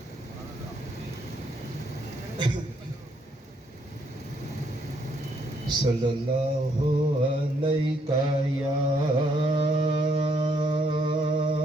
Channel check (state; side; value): normal; both; correlation 0.71